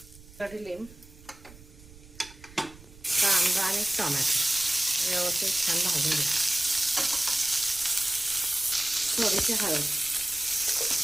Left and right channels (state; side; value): noise; right; rumble, 21 dB below the sound